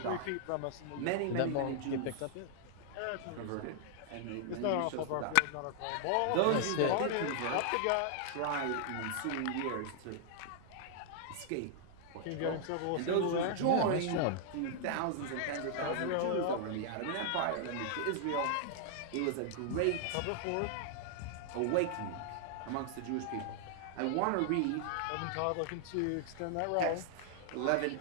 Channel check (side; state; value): both; different; correlation -0.01